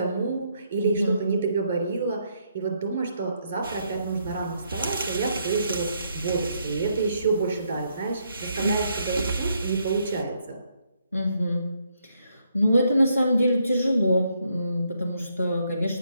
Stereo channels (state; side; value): inverted; both; correlation -0.75